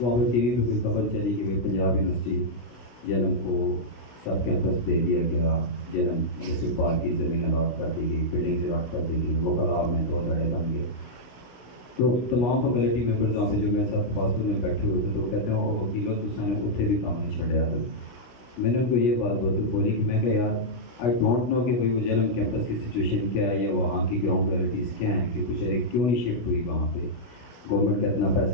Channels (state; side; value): late; right; 17 ms